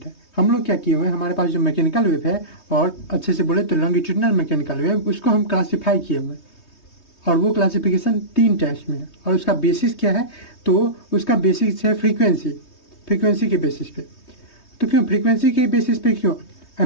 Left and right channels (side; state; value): right; late; 3.2 ms